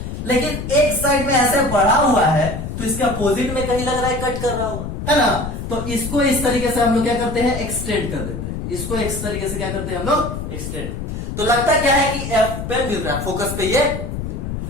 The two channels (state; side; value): noise; left; rumble, 6 dB below the sound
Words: लेकिन एक साइड में ऐसे बढ़ा हुआ है तो इसका अपोजिट में कहीं लग रहा है कट कर रहा होगा, है ना? तो इसको इस तरीके से हम लोग क्या करते हैं? एक्सटेंड कर देते हैं। इसको इस तरीके से क्या करते हैं हम लोग? एक्सटेंड। तो लगता क्या है कि F पे मिल रहा है, फोकस पे ये मिल रहा है।